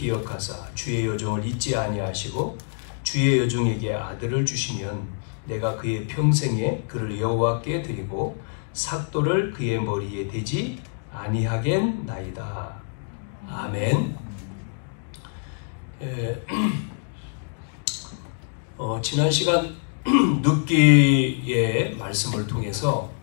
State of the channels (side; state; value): right; silent; digital silence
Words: 주의 여종을 잊지 아니하시고 주의 여종에게 아들을 주시면 내가 그의 평생에 그를 여호와께 드리고 삭도를 그의 머리에 대지 아니하겠나이다. 아멘. 지난 시간 눕기의 말씀을 통해서